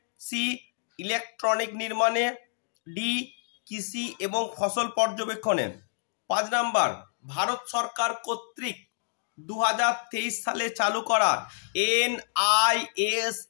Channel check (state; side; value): silent; right; digital silence